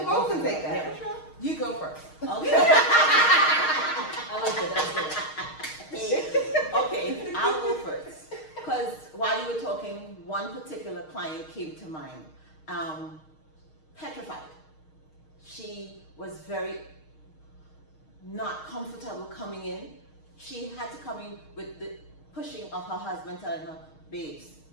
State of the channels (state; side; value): late; right; 6.4 ms